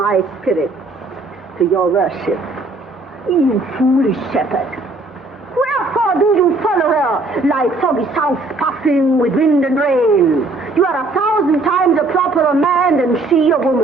spirit to your worship. You foolish shepherd. Wherefore do you follow her like foggy south puffing with wind and rain? You are 1,000 times a properer man than she a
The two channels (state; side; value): quieter; left; 3.1 dB